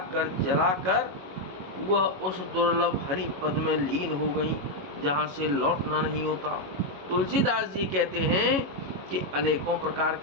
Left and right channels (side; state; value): left; late; 22 ms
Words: कर जलाकर वह उस दुर्लभ हरि पद में लीन हो गई जहाँ से लौटना नहीं होता। तुलसीदास जी कहते हैं कि अनेकों प्रकार